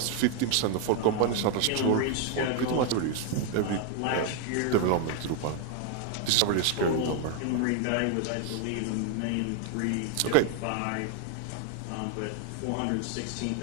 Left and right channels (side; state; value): both; different; correlation 0.00